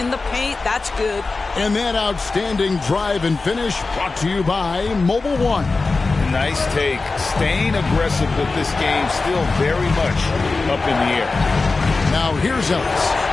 the paint. That's good. And that outstanding drive and finish brought to you by Mobile One. Nice take. Staying aggressive with this game, still very much up in the air. Now here's Ellis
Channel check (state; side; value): quieter; right; 3.8 dB